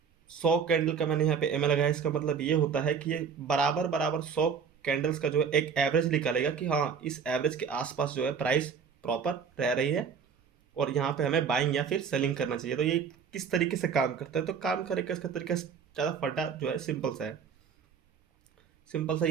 100 कैंडल का मैंने यहाँ पे एम ए लगाया। इसका मतलब ये होता है कि ये बराबर बराबर 100 कैंडल्स का जो है एक एवरेज निकालेगा कि हाँ इस एवरेज के आसपास जो है प्राइस प्रॉपर रह रही है और यहाँ पे हमें बाइंग या फिर सेलिंग करना चाहिए। तो ये किस तरीके से काम करता है, तो काम करेगा इसका तरीका ज़्यादा फटा जो है सिंपल सा है। सिंपल सा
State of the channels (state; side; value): quieter; left; 6.5 dB